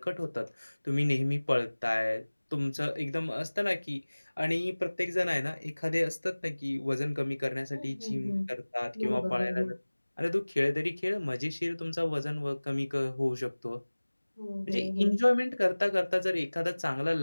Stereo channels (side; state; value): both; inverted; correlation -1.00